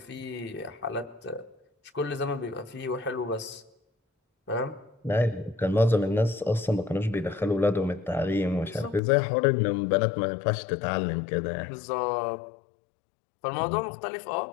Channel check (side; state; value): right; drops out; at 9.0 s